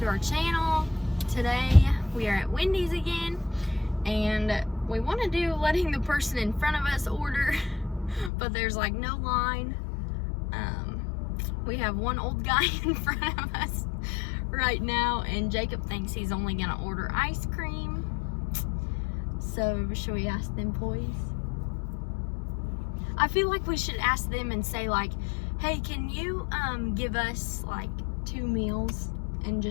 our channel. Today we are at Wendy's again, and we want to do letting the person in front of us order, but there's like no line. We have one old guy in front of us right now, and Jacob thinks he's only gonna order ice cream. So should we ask them, please? I feel like we should ask them and say like, hey, can you give us like 2 meals and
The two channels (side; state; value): right; drops out; at 8.3 s